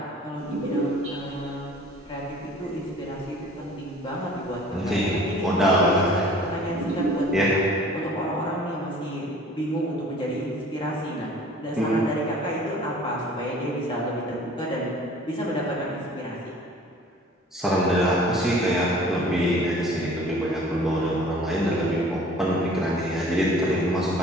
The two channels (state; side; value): normal; both; correlation 0.49